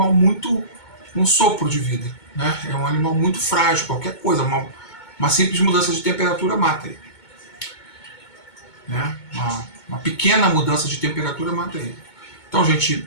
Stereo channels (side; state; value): right; late; 2.2 ms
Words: muito um sopro de vida, né? É um animal muito frágil, qualquer coisa, uma simples mudança de temperatura mata ele, né? Uma pequena mudança de temperatura mata ele. Então, gente,